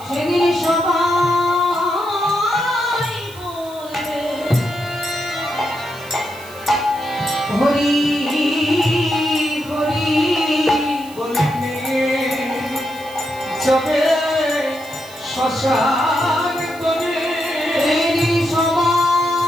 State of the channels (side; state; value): right; noise; hiss, 20 dB below the sound